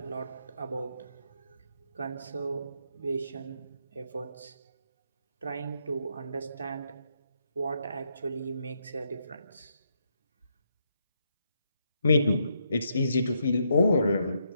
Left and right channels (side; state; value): both; inverted; correlation -0.77